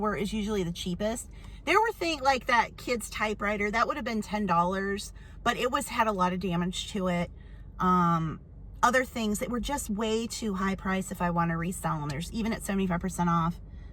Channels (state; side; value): identical; both; correlation 1.00